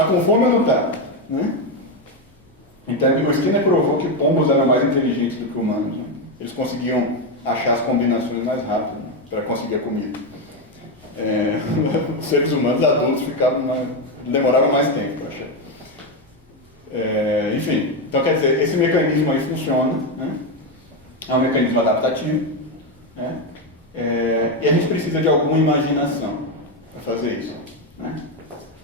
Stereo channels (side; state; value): both; normal; correlation 0.08